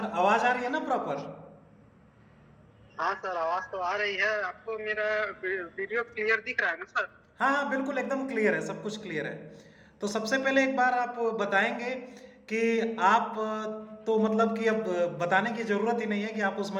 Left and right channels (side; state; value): both; identical; correlation 1.00